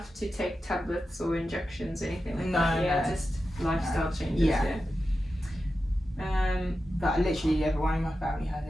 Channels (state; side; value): normal; both; correlation 0.91